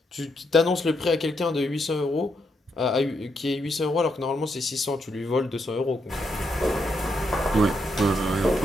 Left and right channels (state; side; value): normal; both; correlation 0.79